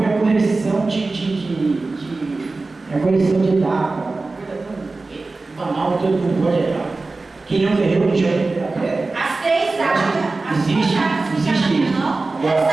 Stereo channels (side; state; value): left; quieter; 3.5 dB